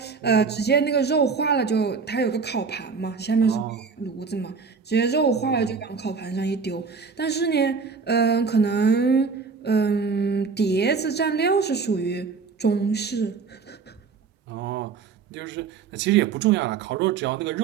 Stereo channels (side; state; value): left; quieter; 5.2 dB